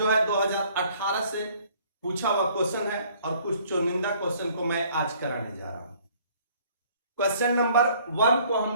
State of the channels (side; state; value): both; inverted; correlation -0.58